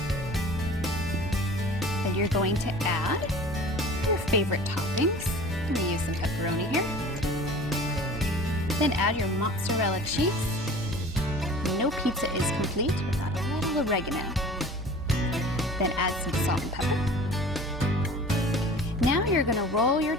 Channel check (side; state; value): both; normal; correlation 0.42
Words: Then you're going to add your favorite toppings. I'm going to use some pepperoni here. Then add your mozzarella cheese. No pizza is complete without a little oregano. Then add some salt and pepper. Now you're going to roll your